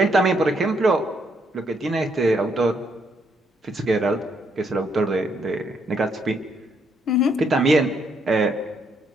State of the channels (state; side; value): normal; both; correlation 0.73